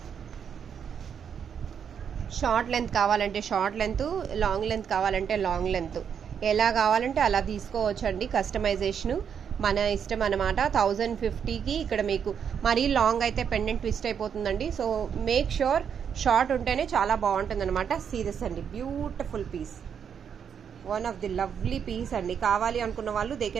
షార్ట్ లెంత్ కావాలంటే షార్ట్ లెంత్, లాంగ్ లెంత్ కావాలంటే లాంగ్ లెంత్, ఎలా కావాలంటే అలా తీసుకోవచ్చండి. కస్టమైజేషను మన ఇష్టం అనమాట. 1050కి ఇక్కడ మీకు మరీ లాంగ్ అయితే పెండెంట్ ట్విస్ట్ అయిపోతుందండి. సో మేక్ ష్యూర్ షార్ట్ ఉంటేనే చాలా బాగుంటుంది అనమాట. సీరియస్ అండి, beautiful piece, one of the lovely piece అండి. కావాలి అనుకున్న వాళ్ళు they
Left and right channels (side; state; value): left; quieter; 7.6 dB